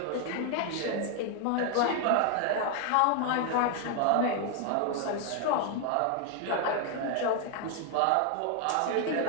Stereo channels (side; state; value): both; different; correlation 0.00